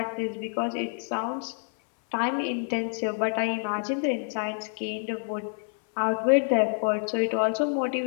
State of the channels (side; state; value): right; silent; 60 dB below the other